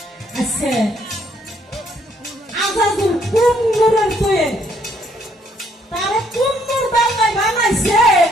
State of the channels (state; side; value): normal; both; correlation 0.68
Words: আচ্ছা আজাদুল কোন নূরের তৈরি তারা কোন নূর বাংলায় বানাইছে